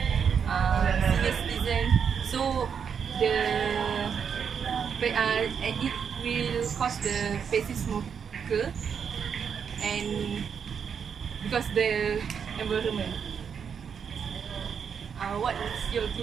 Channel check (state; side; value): quieter; left; 7.1 dB